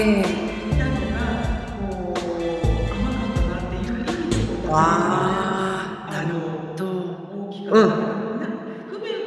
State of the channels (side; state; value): both; identical; correlation 1.00